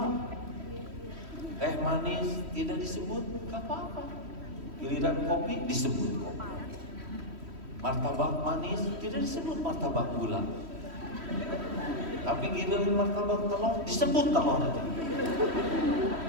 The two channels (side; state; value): left; late; 3.1 ms